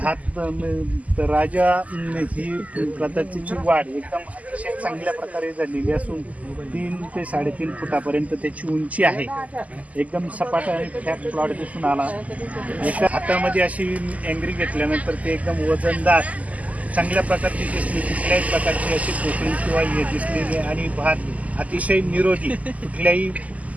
राजा ही प्रजातीची वाढ एकदम अतिशय चांगल्या प्रकारे झालेली असून 3 ते 3.5 फुटापर्यंत त्याची उंची आहे. एकदम सपाट आणि फ्लॅट प्लॉट दिसून आला. एका हातामध्ये अशी अँग्री घेतल्यानंतर ते एकदम वजनदार चांगल्या प्रकारची दिसली. कुठल्याही प्रकारची अशी पोकळी किंवा हे दिसलेली आणि भात अतिशय निरोगी, कुठल्याही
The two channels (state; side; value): late; left; 0.073 ms